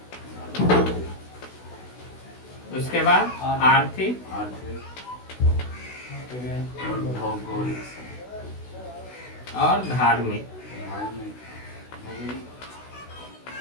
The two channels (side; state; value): right; late; 16 ms